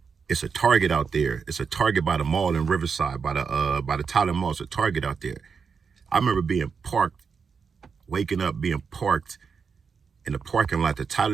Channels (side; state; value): left; quieter; 5.8 dB